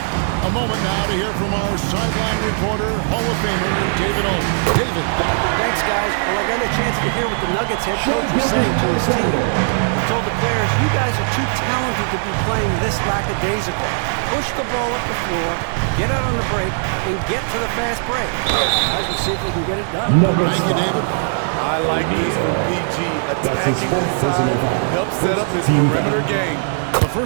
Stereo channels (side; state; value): left; silent; 67 dB below the other